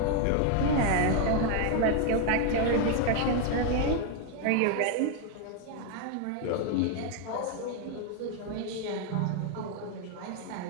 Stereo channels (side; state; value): both; different; correlation 0.01